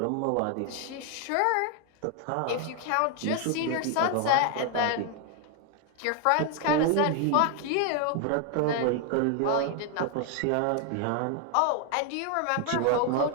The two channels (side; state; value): both; different; correlation 0.01